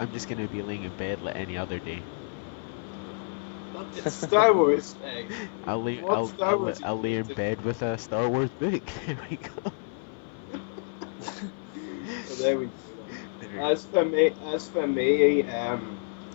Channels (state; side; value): silent; right; 56 dB below the other